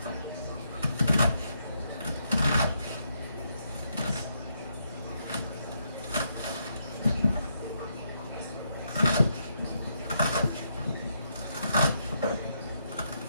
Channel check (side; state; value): both; inverted; correlation -0.78